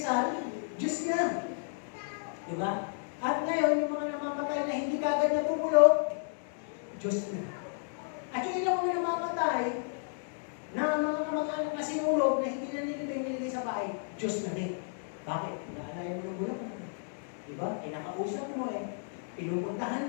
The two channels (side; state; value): right; silent; digital silence